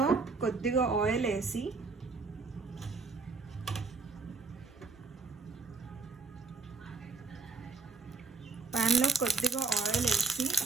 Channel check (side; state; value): left; quieter; 4.3 dB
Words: కొద్దిగా ఆయిల్ వేసి